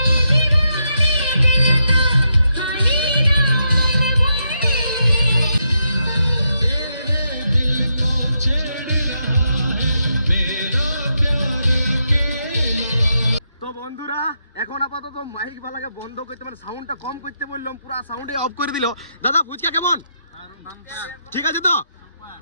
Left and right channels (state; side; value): inverted; both; correlation -0.82